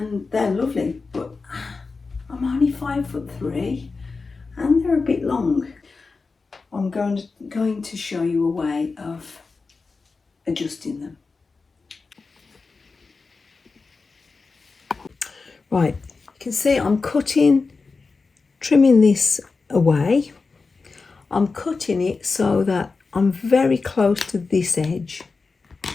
they're lovely, but I'm only 5'3" and they're a bit long. I'm going to show you a way of adjusting them. Right, you can see I'm trimming this away. I'm cutting it so that I'm very close to this edge.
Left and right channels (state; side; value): quieter; right; 4.2 dB